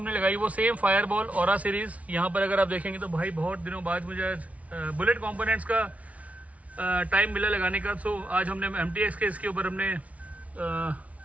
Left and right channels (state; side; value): late; left; 0.067 ms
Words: लगाई वो सेम फायरबॉल ऑरा सीरीज। यहाँ पर अगर आप देखेंगे तो भाई बहुत दिनों बाद मुझे आज बुलेट कॉम्पोनेंट्स का टाइम मिला लगाने का। सो आज हमने MTX के इसके ऊपर हमने